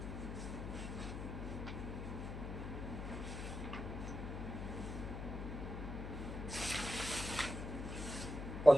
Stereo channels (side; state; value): left; noise; hum, 6 dB below the sound